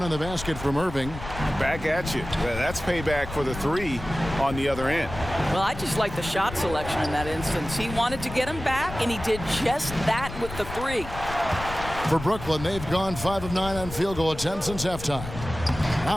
on the basket from Irving. Back at you. That's payback for the 3 on the other end. Well, I just like the shot selection in that instance. He wanted to get him back, and he did just that with the 3. For Brooklyn, they've gone 5 of 9 on field goal attempts since halftime.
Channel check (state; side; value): noise; left; rumble, 10 dB below the sound